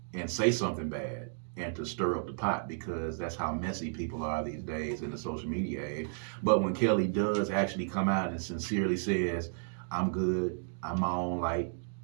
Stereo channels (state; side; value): silent; left; digital silence